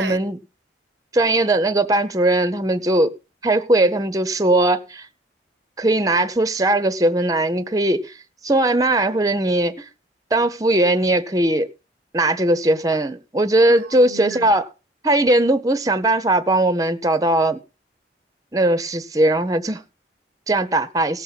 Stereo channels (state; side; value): normal; both; correlation 0.50